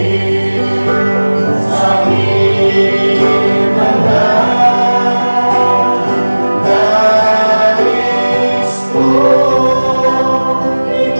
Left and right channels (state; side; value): inverted; both; correlation -1.00